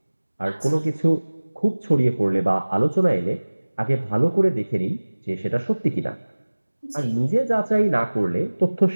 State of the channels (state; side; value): inverted; both; correlation -1.00